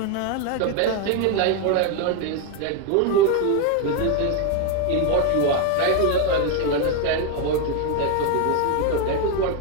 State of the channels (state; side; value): different; both; correlation 0.01